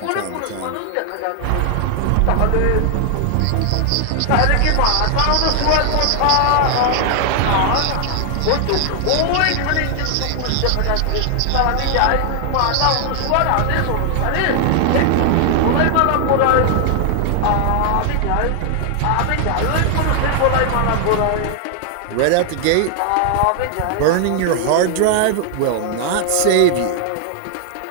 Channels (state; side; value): different; both; correlation 0.00